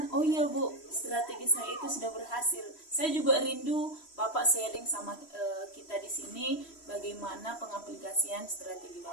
oh iya Bu, strategi saya itu sudah berhasil. Saya juga rindu Bapak sharing sama kita di sini bagaimana pengaplikasian strategi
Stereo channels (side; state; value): right; late; 3.1 ms